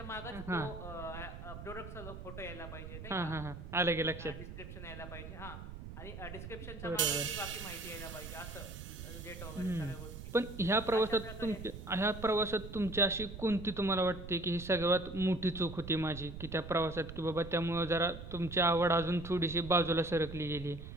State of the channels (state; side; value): noise; right; rumble, 11 dB below the sound